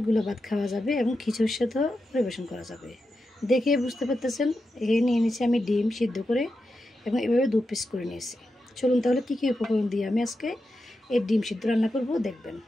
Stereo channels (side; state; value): both; normal; correlation 0.89